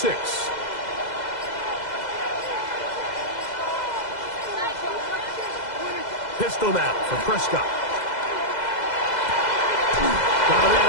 Pistol now for Prescott. Got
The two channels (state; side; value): late; right; 2.0 ms